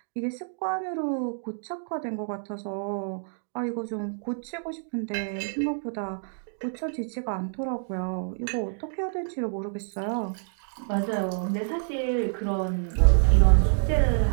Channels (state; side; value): silent; left; digital silence